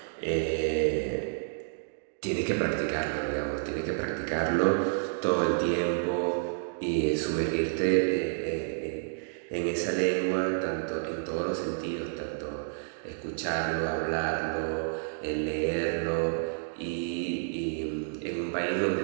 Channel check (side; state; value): left; silent; digital silence